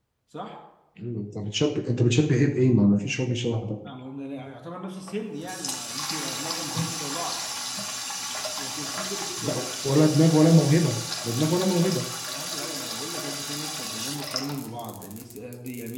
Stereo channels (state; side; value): identical; both; correlation 1.00